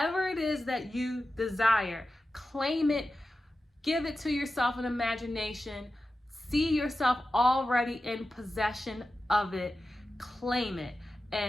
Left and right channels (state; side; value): normal; both; correlation 0.93